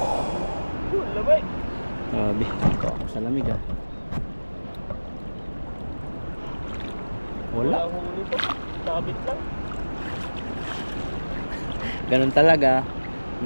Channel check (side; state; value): both; inverted; correlation -1.00